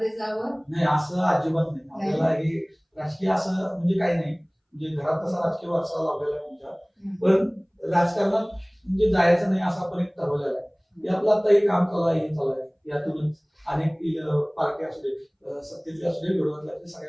जावं? नाही, असं अजिबात नाही. आपल्याला हे राजकीय असं म्हणजे काही नाही, म्हणजे घरात तसा राजकीय वारसा लावलेला आहे तुमच्या, पण राजकारणात म्हणजे जायचं नाही असं आपण एक ठरवलेलं आहे. हे आपलं आता हे काम चालू आहे, हे चालू आहे, यातूनच अनेक पार्टी असू दे, सत्तेतले असू दे, विरोधातले असू दे,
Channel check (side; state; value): both; identical; correlation 1.00